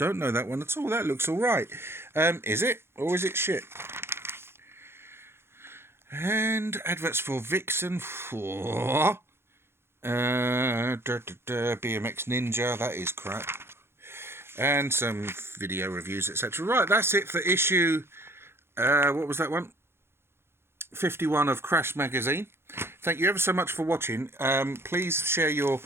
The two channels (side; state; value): left; late; 0.12 ms